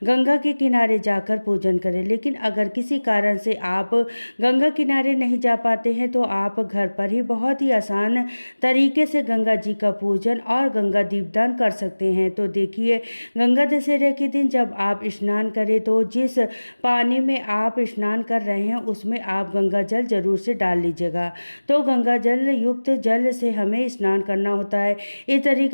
गंगा के किनारे जाकर पूजन करें। लेकिन अगर किसी कारण से आप गंगा किनारे नहीं जा पाते हैं तो आप घर पर ही बहुत ही आसान तरीके से गंगा जी का पूजन और गंगा दीपदान कर सकते हैं। तो देखिए, गंगा दशहरे के दिन जब आप स्नान करें तो जिस पानी में आप स्नान कर रहे हैं उसमें आप गंगा जल जरूर से डाल लीजिएगा। तो गंगा जल युक्त जल से हमें स्नान करना होता है। इस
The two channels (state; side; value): inverted; both; correlation -1.00